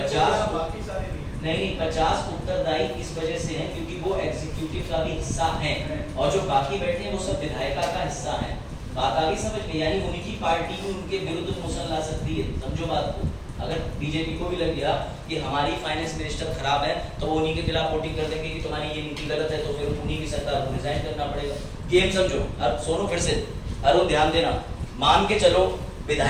बाकी सारे नहीं 50 उत्तरदायी इस वजह से हैं क्योंकि वो एग्जीक्यूटिव का भी हिस्सा हैं, और जो बाकी बैठे हैं वो सब विधायिका का हिस्सा हैं। बात आगे समझ में? यानी उनकी पार्टी भी उनके विरुद्ध मोशन ला सकती है। समझो बात को। अगर बीजेपी को भी लग गया कि हमारी फाइनेंस मिनिस्टर खराब है, तो वो उन्हीं के खिलाफ वोटिंग कर देंगे कि तुम्हारी ये नीति गलत है, तो फिर उन्हीं की सरकार को रिजाइन करना पड़ेगा। गेम समझो। अब सोनो फिर से, अरुण ध्यान देना। मान के चलो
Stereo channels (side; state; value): both; identical; correlation 1.00